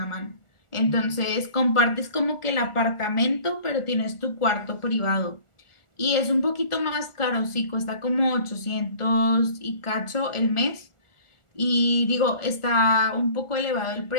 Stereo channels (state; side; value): late; right; 1.4 ms